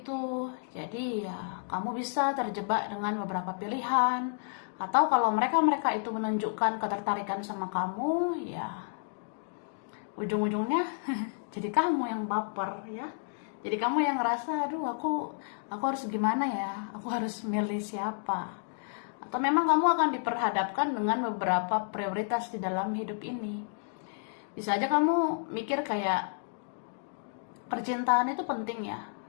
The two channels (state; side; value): silent; right; digital silence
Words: Jadi ya kamu bisa terjebak dengan beberapa pilihan, atau kalau mereka itu menunjukkan ketertarikan sama kamu, ya ujung-ujungnya jadi kamu yang baper ya. Jadi kamu yang ngerasa, aduh aku harus gimana ya, aku harus milih siapa. Atau memang kamu akan diperhadapkan dengan beberapa prioritas di dalam hidup ini. Bisa aja kamu mikir kayak percintaan itu penting ya,